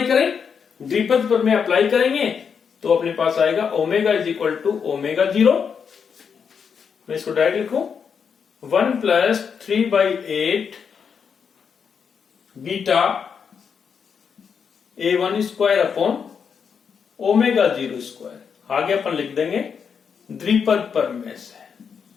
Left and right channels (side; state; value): right; quieter; 6.6 dB